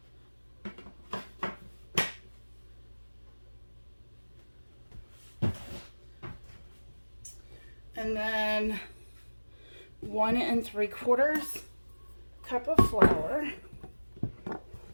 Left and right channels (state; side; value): inverted; both; correlation -1.00